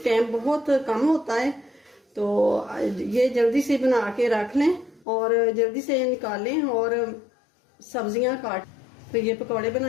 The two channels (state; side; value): drops out; right; at 5.1 s